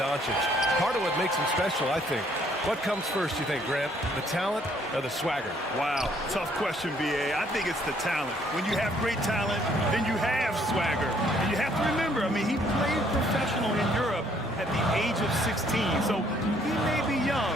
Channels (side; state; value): both; normal; correlation 0.65